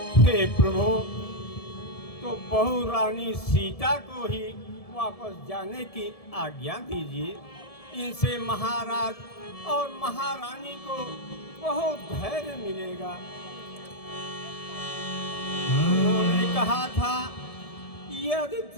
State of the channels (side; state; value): right; late; 1.7 ms